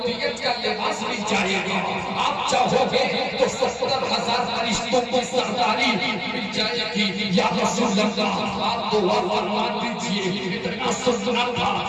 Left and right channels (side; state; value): both; identical; correlation 1.00